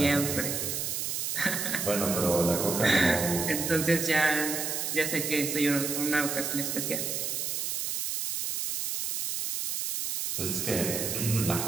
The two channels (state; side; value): noise; right; hiss, 2 dB below the sound